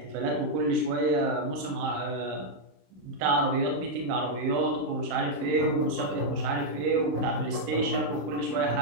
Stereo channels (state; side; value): late; left; 27 ms